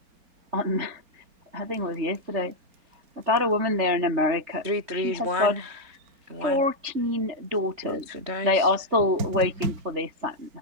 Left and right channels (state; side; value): late; left; 3.4 ms